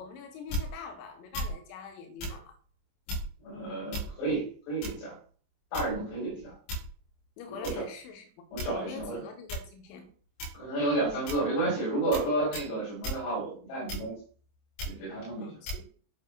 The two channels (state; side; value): late; right; 27 ms